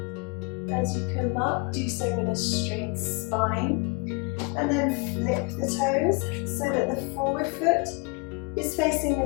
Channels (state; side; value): quieter; right; 30.4 dB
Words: As you come up, do so with a straight spine. And then flip the toes so that the forward foot is facing